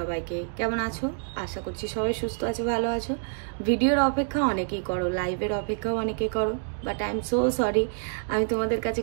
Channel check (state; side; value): silent; left; digital silence